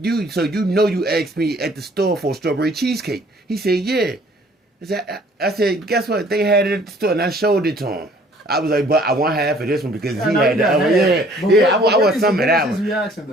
so you know you asked me at the store for strawberry cheesecake. He said, yeah. I said, guess what? They had it at the store, and I showed it to him. I was like, but I want half of this one because he had that. I want some of that one. His reaction,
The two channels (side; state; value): both; normal; correlation 0.57